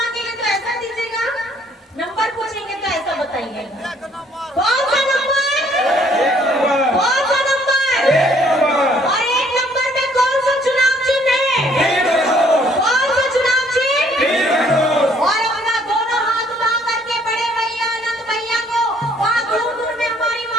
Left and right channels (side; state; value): both; normal; correlation 0.63